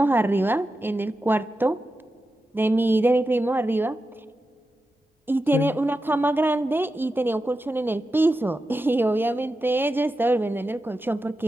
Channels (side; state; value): both; normal; correlation 0.90